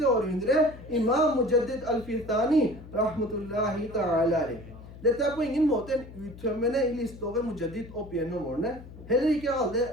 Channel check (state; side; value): noise; left; hum, 16 dB below the sound